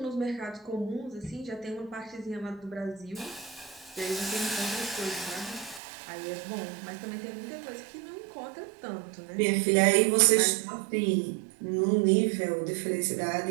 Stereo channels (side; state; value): left; drops out; at 5.8 s